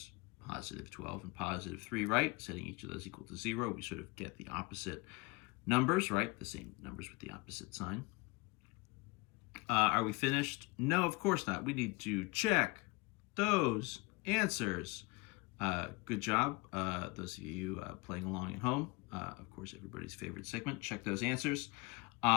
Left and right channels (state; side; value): quieter; right; 25.6 dB